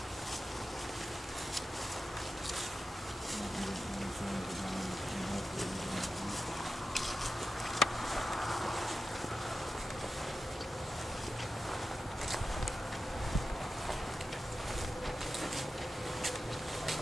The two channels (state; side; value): normal; both; correlation 0.92